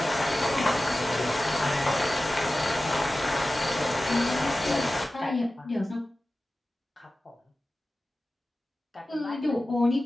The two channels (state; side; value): normal; both; correlation 0.95